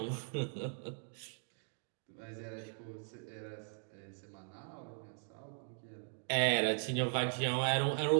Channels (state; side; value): silent; left; 52 dB below the other